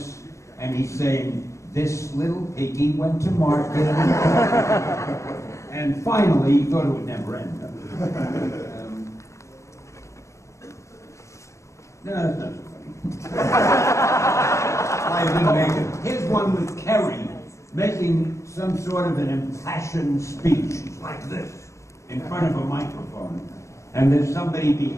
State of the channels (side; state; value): right; late; 0.14 ms